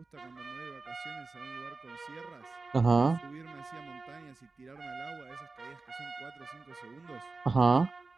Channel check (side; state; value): left; quieter; 3.8 dB